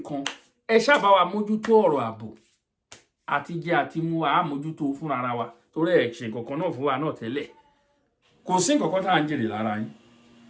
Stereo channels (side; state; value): both; identical; correlation 1.00